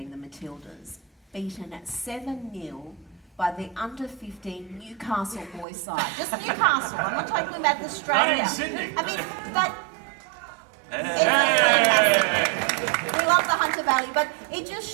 the Matildas, beaten at 7-0 by the under-15 Newcastle boys side. Just Newcastle. I'm not talking about Australia. Not in Sydney. I mean, that. We love the Hunter Valley, but it just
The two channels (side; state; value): left; drops out; at 5.7 s